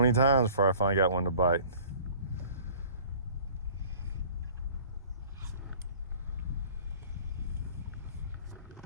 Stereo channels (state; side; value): inverted; both; correlation -0.49